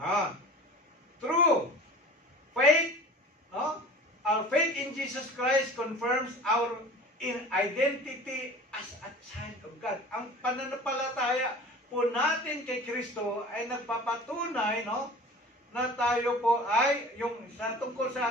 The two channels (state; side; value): normal; both; correlation 0.41